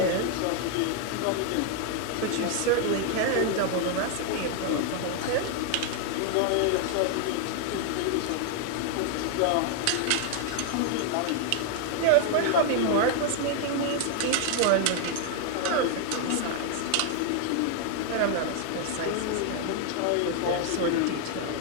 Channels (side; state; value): both; different; correlation 0.00